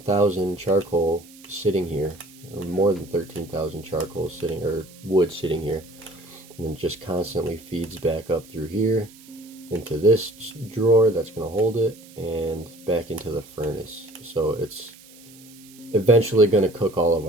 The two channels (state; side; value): noise; right; hiss, 23 dB below the sound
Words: charcoal sitting here, or more than 13,000 charcoal sitting, or wood sitting here, and then just constantly feeds back up through here into this drawer that's going to hold it and back into the furnace. So it's eventually going to cook all of